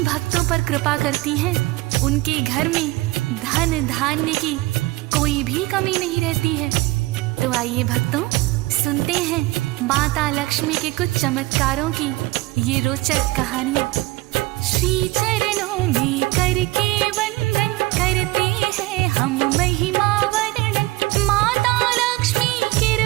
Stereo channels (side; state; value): left; quieter; 20.3 dB